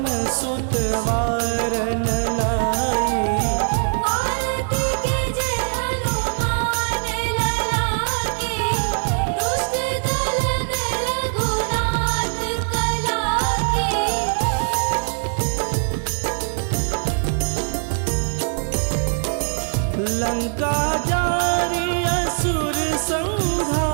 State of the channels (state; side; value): silent; left; 64 dB below the other